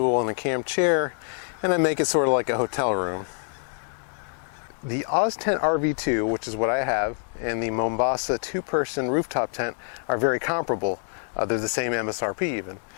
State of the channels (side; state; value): right; silent; 61 dB below the other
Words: and a camp chair, and I make it sort of like a hotel room. The OzTent RV2, which is what I have, and the Mombasa two-person rooftop tent are very comparable. They're the same MSRP even.